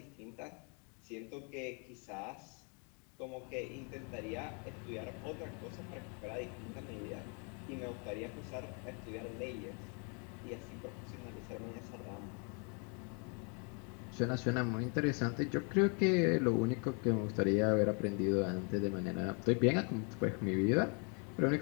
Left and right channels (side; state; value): right; quieter; 37.3 dB